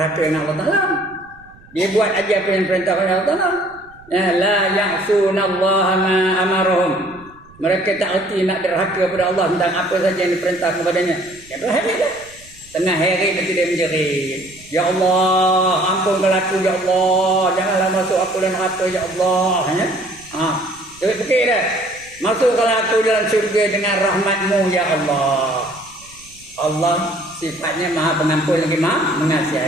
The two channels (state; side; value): noise; right; rumble, 25 dB below the sound